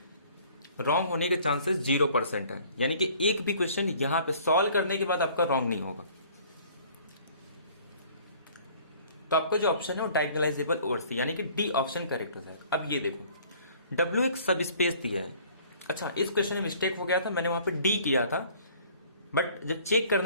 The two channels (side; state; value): both; inverted; correlation -0.54